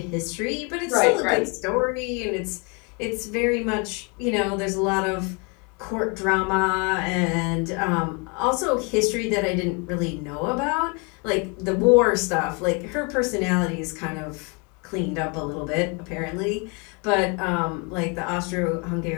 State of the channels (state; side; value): quieter; right; 32.7 dB